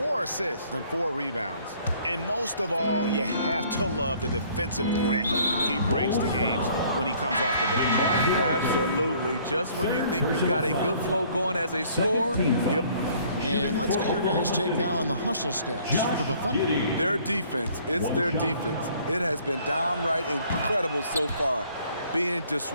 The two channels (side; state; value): both; inverted; correlation -0.58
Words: assists and 4 rebounds. And most of all, you have to love the defensive grit he brings to games when he comes off the bench. Absolutely. Just when you think you've got a good flow going as a scorer, yep. And let's get your guys' take now on the hustle stats for the Thunder. Their defense, it's their defense. It has been downright incredible so far, being